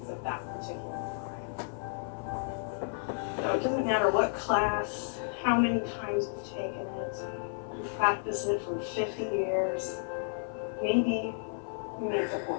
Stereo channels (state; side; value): silent; right; 56 dB below the other